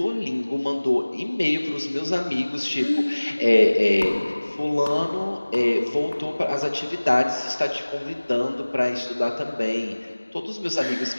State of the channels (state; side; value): inverted; both; correlation -1.00